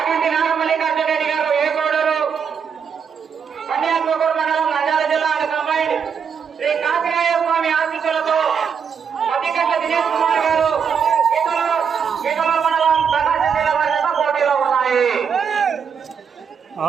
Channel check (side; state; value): left; quieter; 6.8 dB